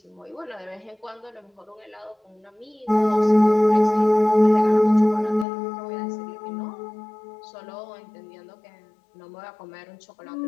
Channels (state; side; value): drops out; right; at 5.5 s